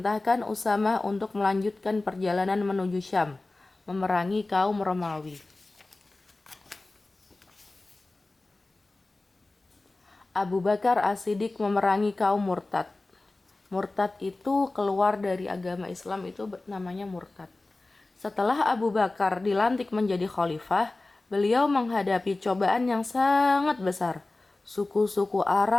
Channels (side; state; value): right; quieter; 3.1 dB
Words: Usamah untuk melanjutkan perjalanan menuju Syam, memerangi kaum Romawi. Abu Bakar As-Siddiq memerangi kaum murtad. Murtad itu keluar dari agama Islam, itu namanya murtad. Setelah Abu Bakar dilantik menjadi khalifah, beliau menghadapi cobaan yang sangat besar. Suku-suku